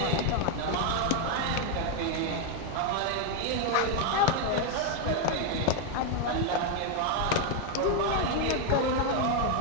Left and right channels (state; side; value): different; both; correlation 0.01